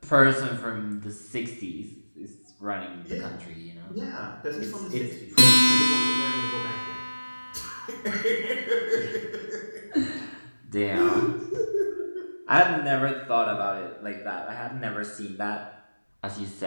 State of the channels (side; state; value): both; inverted; correlation -1.00